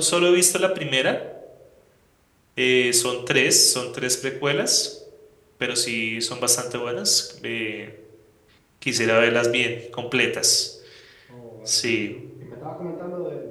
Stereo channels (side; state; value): both; identical; correlation 1.00